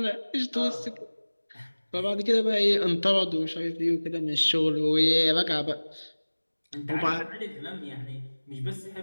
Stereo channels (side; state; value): both; inverted; correlation -1.00